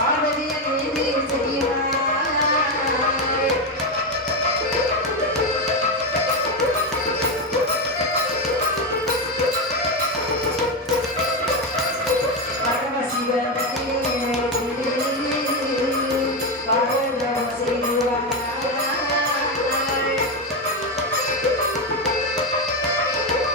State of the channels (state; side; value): normal; both; correlation 0.11